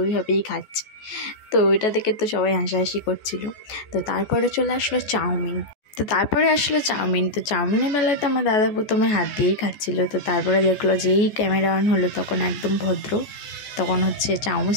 ওইভাবেই খাচ্ছে। তো ওইটা দেখে তো সবাই হাসাহাসি করছিল। তো তারপরে চলে আসলো চাউমিন। তো চাউমিনের বেলায় তো আমার দাদা প্রথমে হাত দিয়েই খাচ্ছিল। তো তারপরে দেখলো যেই ক্যামেরা অন হলো তখন একদম ভদ্র, তখন হচ্ছে চামচ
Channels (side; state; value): right; late; 14 ms